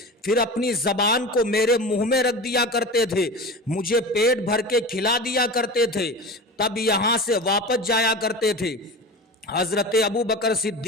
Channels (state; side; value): normal; both; correlation 0.31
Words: پھر اپنی زبان کو میرے منہ میں رکھ دیا کرتے تھے، مجھے پیٹ بھر کے کھلا دیا کرتے تھے، تب یہاں سے واپس جایا کرتے تھے۔ حضرت ابو بکر